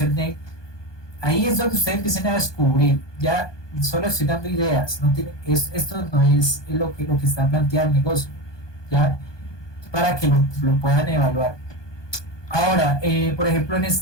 ahí es donde ustedes empiezan a descubrir. Ya solo estoy dando ideas, esto no es lo que está planteado el negocio, ya, para que lo puedan evaluar. Ahora, por ejemplo, en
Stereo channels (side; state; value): right; late; 1.2 ms